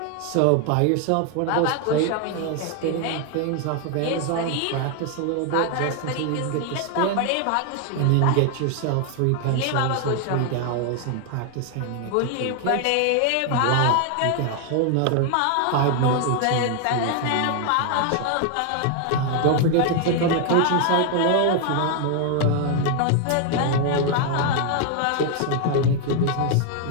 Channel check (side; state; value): both; different; correlation 0.00